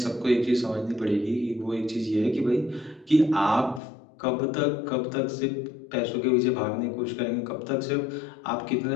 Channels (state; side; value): drops out; right; at 3.8 s